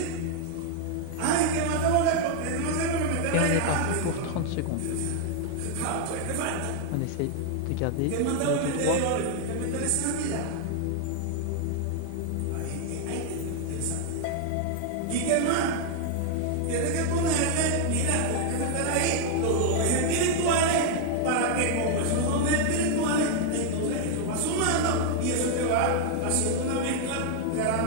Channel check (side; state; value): both; different; correlation 0.00